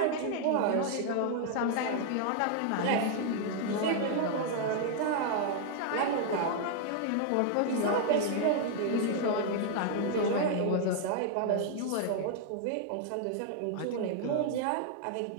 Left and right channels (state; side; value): different; both; correlation 0.00